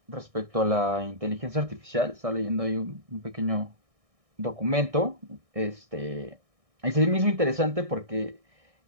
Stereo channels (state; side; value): late; left; 1.6 ms